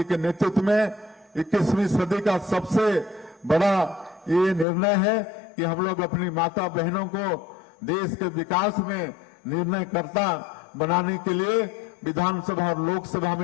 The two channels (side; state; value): right; drops out; at 4.7 s